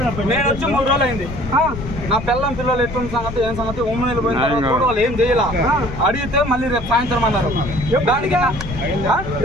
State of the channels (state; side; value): noise; left; rumble, 9 dB below the sound